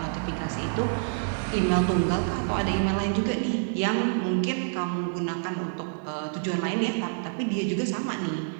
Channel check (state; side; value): silent; left; digital silence